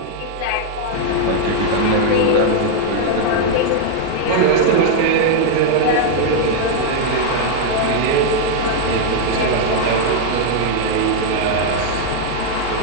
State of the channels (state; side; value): different; both; correlation 0.00